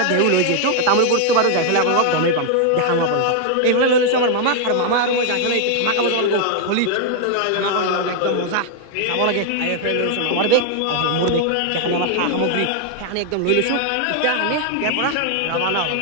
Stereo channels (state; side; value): different; both; correlation 0.00